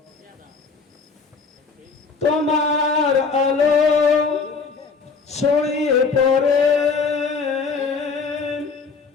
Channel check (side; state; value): right; quieter; 4.9 dB